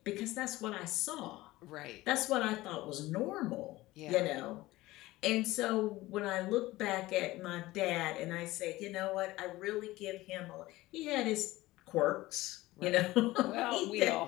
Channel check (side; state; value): right; quieter; 18.3 dB